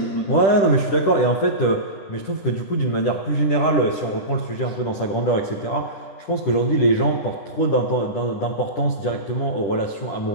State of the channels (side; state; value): right; late; 10 ms